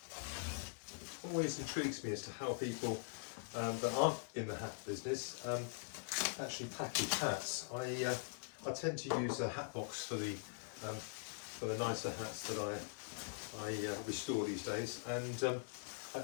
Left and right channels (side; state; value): right; silent; digital silence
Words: Always intrigues me as to how people that aren't in the hat business actually package hats. I tend to use a hat box for the nicer hats that I restore these days, and